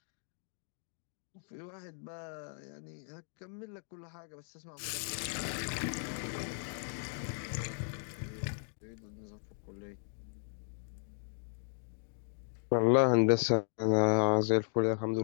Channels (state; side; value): silent; right; digital silence